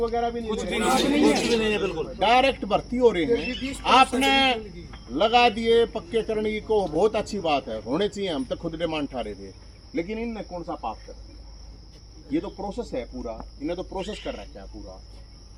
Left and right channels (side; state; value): both; identical; correlation 1.00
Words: भी नहीं है, बिल्कुल डायरेक्ट भर्ती हो रही है। आपने लगा दिए पक्के करने की को बहुत अच्छी बात है, होने चाहिए, हम तो खुद डिमांड ठा रहे थे, लेकिन इनने कौन सा पाप कर दिया? ये तो प्रोसेस है पूरा, इन्हें तो प्रोसेस कर रखा है पूरा,